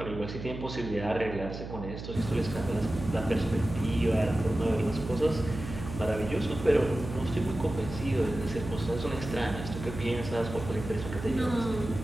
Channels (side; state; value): right; noise; hum, 9 dB below the sound